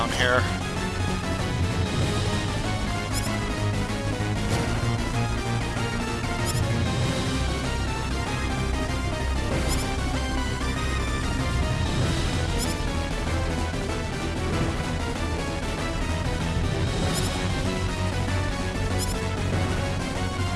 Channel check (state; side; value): identical; both; correlation 1.00